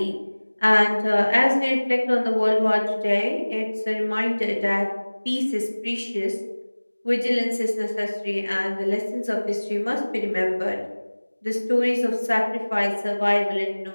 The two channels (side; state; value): both; inverted; correlation -1.00